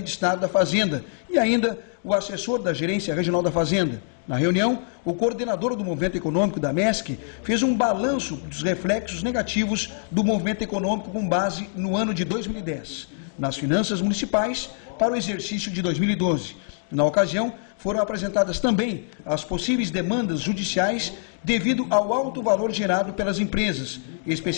de Estado da Fazenda e ainda o assessor da Gerência Regional da Fazenda. Na reunião, o coordenador do movimento econômico da MESC fez um balanço dos reflexos negativos do movimento econômico com base no ano de 2010, nas finanças municipais para o exercício de 2012. Na ocasião, foram apresentadas também as possíveis demandas judiciais devido ao alto valor gerado pelas empresas,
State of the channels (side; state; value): right; silent; digital silence